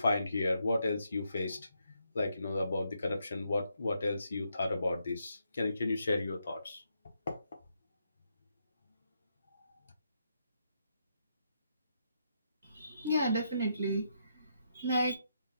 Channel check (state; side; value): inverted; both; correlation -0.79